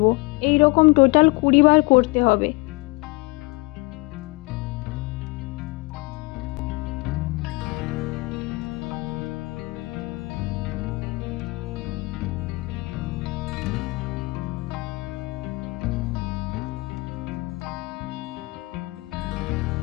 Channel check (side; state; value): right; quieter; 25.3 dB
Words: এই রকম টোটাল 20 বার করতে হবে।